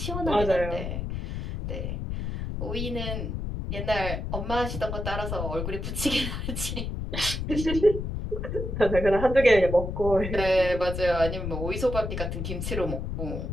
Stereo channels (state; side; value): noise; left; rumble, 4 dB below the sound